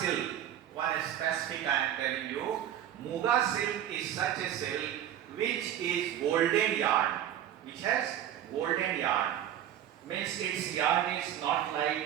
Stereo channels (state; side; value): quieter; left; 10.9 dB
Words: One specific I am telling you, Muga silk is such a silk which is golden yarn, which has golden yarn. Means its yarn is not